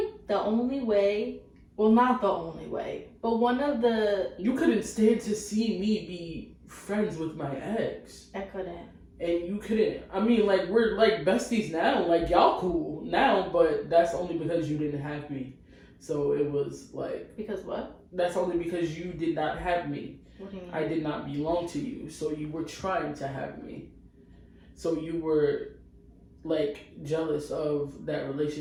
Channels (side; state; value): both; identical; correlation 1.00